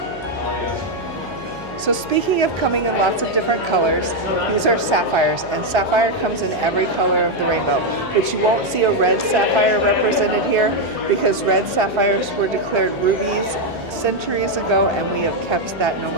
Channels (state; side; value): noise; right; hum, 18 dB below the sound